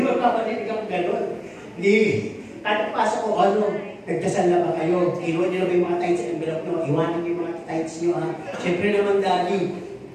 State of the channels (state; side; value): identical; both; correlation 1.00